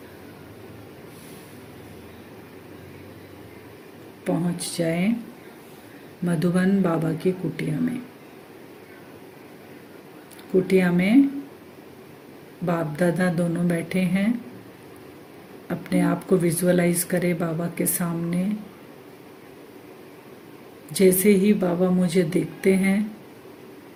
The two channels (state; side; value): identical; both; correlation 1.00